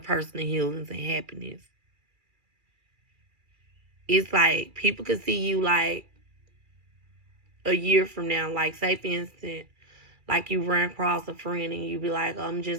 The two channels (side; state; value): left; late; 2.3 ms